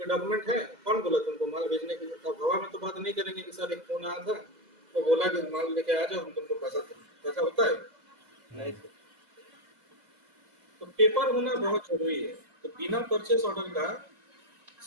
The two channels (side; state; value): left; late; 2.0 ms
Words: डॉक्यूमेंट है, कौन बोला तुमको माल भेजने के लिए? तो हवा में तो बात नहीं करेंगे कि सर एक फोन आया था वो बोला कि माल लेके आ जाओ हम तुमको पैसा देंगे, ऐसा होता है? नहीं सर। तो पेपर होना बहुत जरूरी है। तो बिना परचेस ऑर्डर का